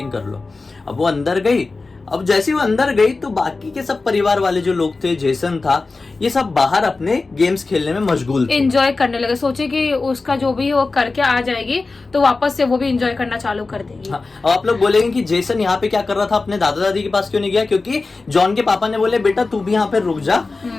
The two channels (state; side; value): quieter; right; 3.7 dB